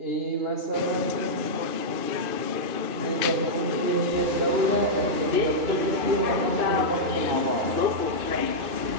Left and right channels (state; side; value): late; left; 2.5 ms